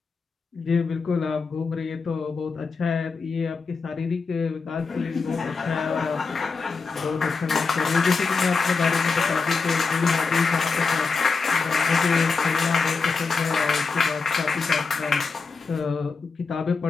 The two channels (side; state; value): right; quieter; 4.7 dB